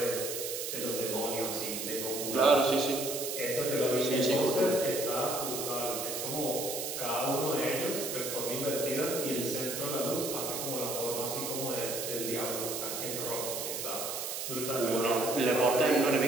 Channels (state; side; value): noise; right; hiss, 4 dB below the sound